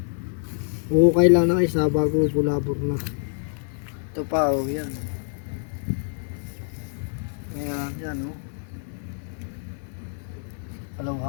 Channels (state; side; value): silent; right; digital silence